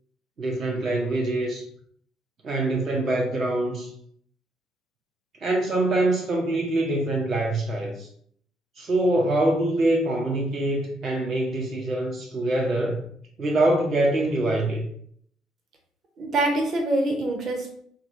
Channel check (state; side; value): normal; both; correlation 0.75